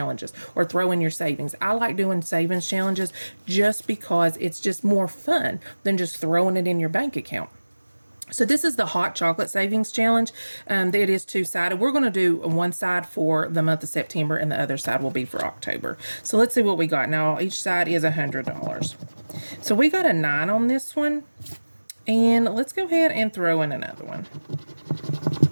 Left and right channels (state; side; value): inverted; both; correlation -1.00